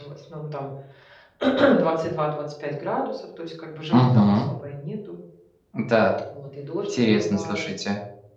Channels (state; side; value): identical; both; correlation 1.00